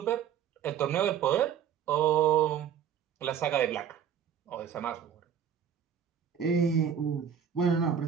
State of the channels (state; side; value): quieter; left; 8.4 dB